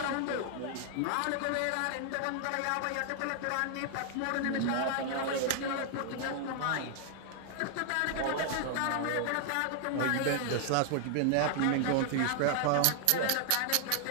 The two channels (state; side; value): different; both; correlation 0.00